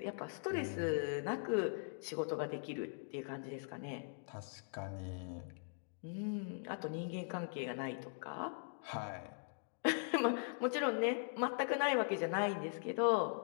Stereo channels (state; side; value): silent; right; digital silence